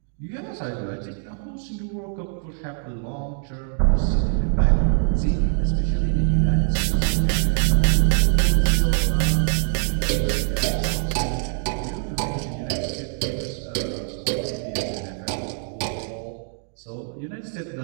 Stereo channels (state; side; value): silent; left; 63 dB below the other